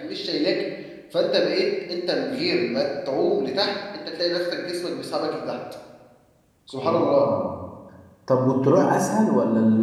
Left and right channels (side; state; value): both; identical; correlation 1.00